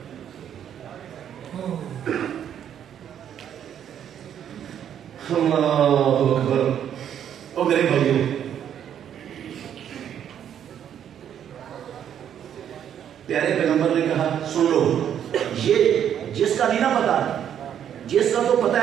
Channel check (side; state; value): left; quieter; 9.5 dB